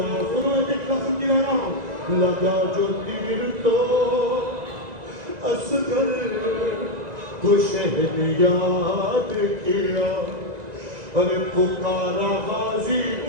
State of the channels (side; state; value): left; late; 1.9 ms